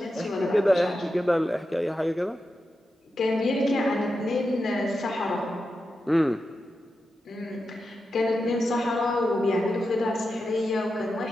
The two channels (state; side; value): normal; both; correlation 0.89